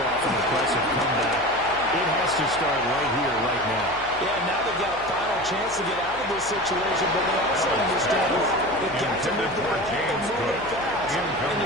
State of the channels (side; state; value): left; noise; hum, 20 dB below the sound